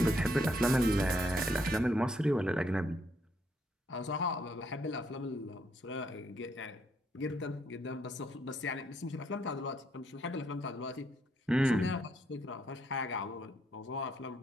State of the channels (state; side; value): normal; both; correlation 0.73